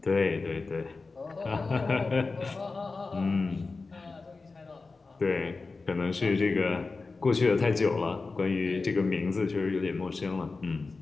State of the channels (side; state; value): right; quieter; 3.9 dB